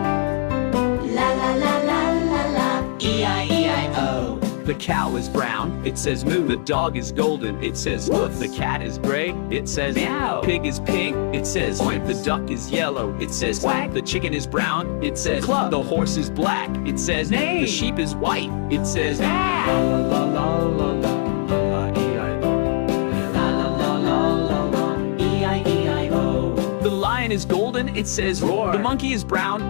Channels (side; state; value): right; silent; 65 dB below the other